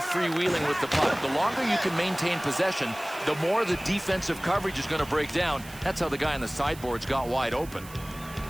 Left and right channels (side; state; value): right; noise; hiss, 18 dB below the sound